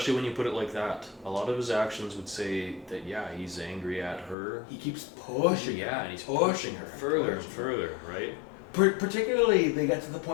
when you put it like that. A lot of his actions would say that, he's angry at her. He keeps pushing her. Yeah, and he's pushing her further and further, right? Particularly, they get to the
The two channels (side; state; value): right; drops out; at 4.4 s